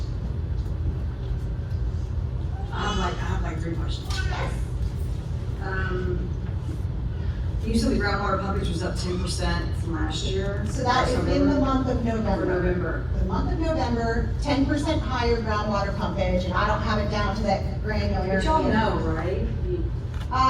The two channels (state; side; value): identical; both; correlation 1.00